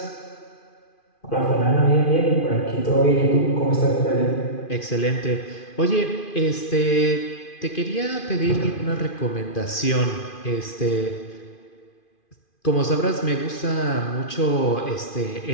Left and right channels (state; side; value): late; right; 2.5 ms